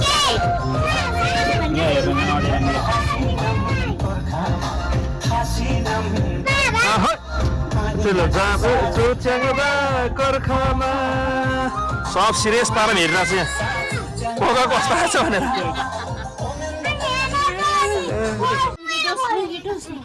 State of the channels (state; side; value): identical; both; correlation 1.00